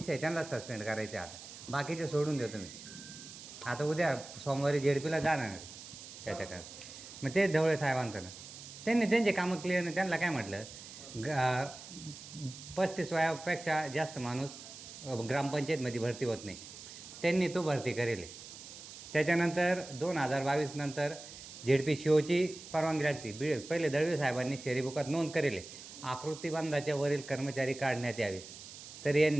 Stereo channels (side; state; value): right; noise; hiss, 14 dB below the sound